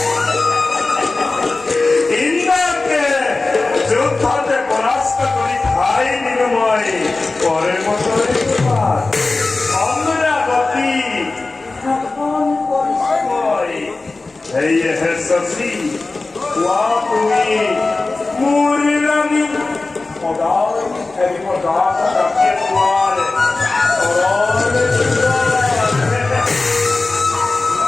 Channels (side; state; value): right; quieter; 3.5 dB